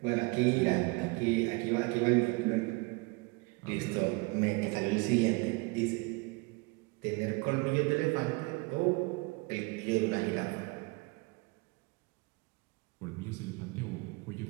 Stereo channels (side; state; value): left; quieter; 27.1 dB